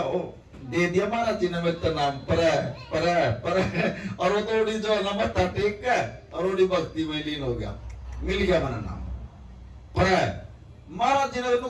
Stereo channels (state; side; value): identical; both; correlation 1.00